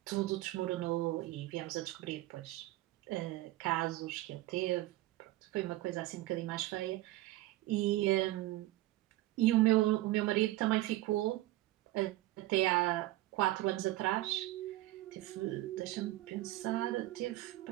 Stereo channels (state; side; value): quieter; left; 17.0 dB